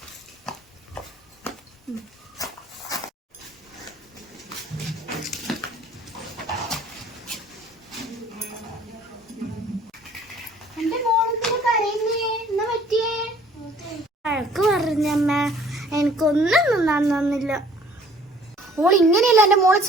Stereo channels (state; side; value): normal; both; correlation 0.55